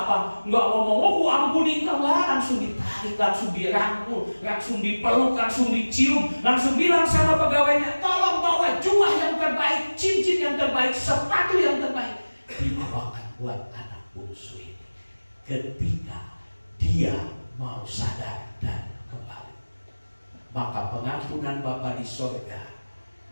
nggak ngomong, aku ampuni kau, langsung ditarik, langsung dirangkul, langsung dipeluk, langsung dicium, langsung bilang sama pegawainya, tolong bawa jubah yang terbaik, cincin yang terbaik, sepatu yang terbaik, dibawakan buat anak bungsu ini. Ketika dia mau sadar dan kembali, maka pengampunan Bapa di sorga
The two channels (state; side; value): inverted; both; correlation -1.00